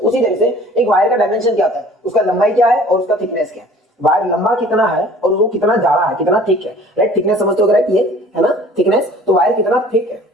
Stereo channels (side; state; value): both; normal; correlation 0.49